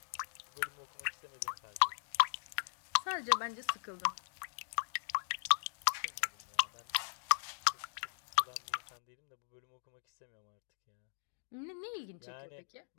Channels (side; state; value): right; silent; digital silence